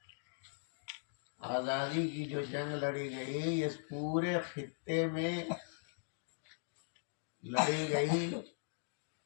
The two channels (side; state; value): right; silent; digital silence